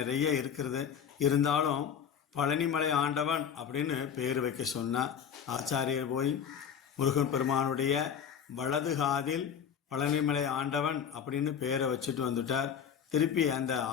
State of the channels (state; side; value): quieter; right; 7.9 dB